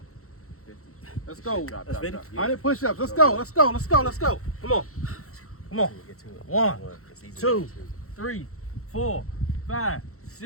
50. Let's go. Drop. 100 push-ups. Let's go. Come on. Get to it. 1, It's easy. 2, 3, 4, 5,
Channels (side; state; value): right; late; 0.64 ms